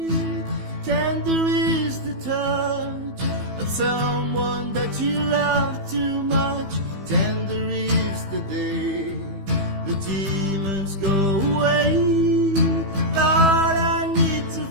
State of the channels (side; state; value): left; late; 15 ms